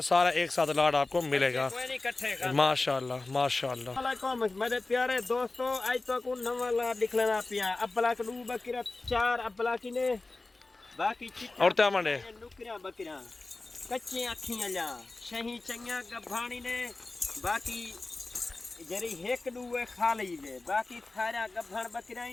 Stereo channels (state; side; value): quieter; right; 3.3 dB